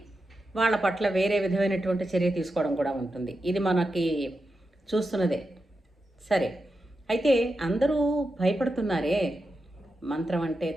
వాళ్ళ పట్ల వేరే విధమైనటువంటి చర్య తీసుకోవడం కూడా ఉంటుంది. ఇది మనకి చూస్తున్నదే. సరే, అయితే అందరూ భయపడుతున్నారే మంత్రం అంటే,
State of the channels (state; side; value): normal; both; correlation 0.89